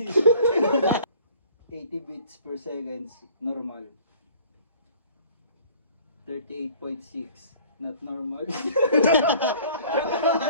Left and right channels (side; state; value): both; inverted; correlation -0.51